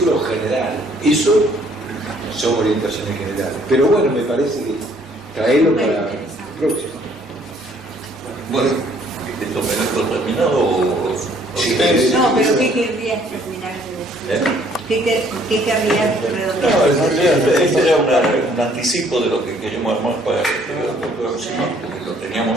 general. Eso son orientaciones generales. Pero bueno, me parece que traerlo para el próximo. Bueno, ¿Esto me dejo terminado o...? Sí, no, pero ¿qué querrías terminar de decir? ¿Qué querrías redondear? No, en realidad este era un anticipo de lo que queríamos armar para el próximo, porque lo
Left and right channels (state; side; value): normal; both; correlation 0.62